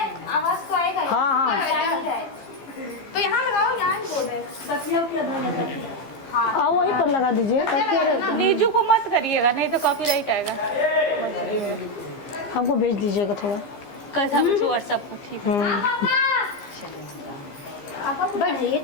तो आएगा। हाँ हाँ तो यहाँ लगाओ, यहाँ बोर्ड है। आप वहीं पर लगा दीजिए। नीजू को मत करिएगा, नहीं तो कॉपीराइट आएगा। हमको भेज दीजिएगा थोड़ा। कैसा व्हाट्सएप पर ठीक है। बैठ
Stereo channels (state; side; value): late; right; 15 ms